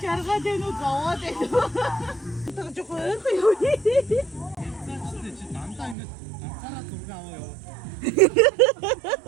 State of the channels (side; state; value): left; drops out; at 6.0 s